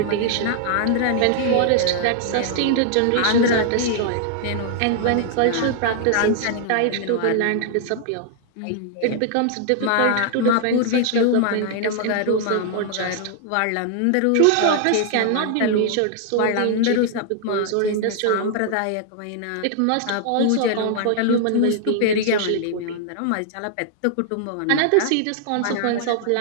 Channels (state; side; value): different; both; correlation 0.00